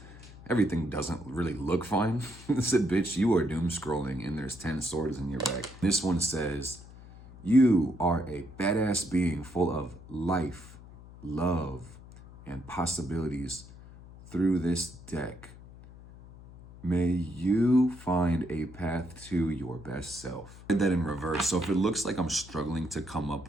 Everything doesn't really look fine. It said, bitch, you are doom scrolling and there's 10 swords in your back. This one says, you are a badass being full of life, love, and possibilities through this deck. May you find a path to your best self. I did that in reverse. So if it looks like I'm struggling to come up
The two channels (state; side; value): noise; left; hum, 18 dB below the sound